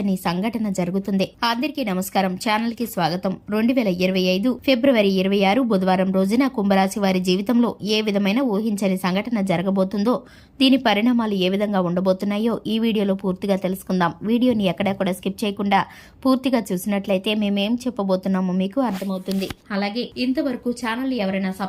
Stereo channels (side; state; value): both; identical; correlation 1.00